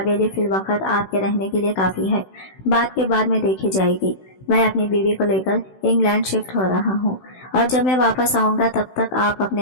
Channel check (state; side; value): late; right; 16 ms